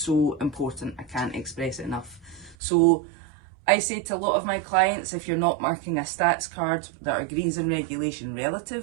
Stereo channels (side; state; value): left; drops out; at 2.6 s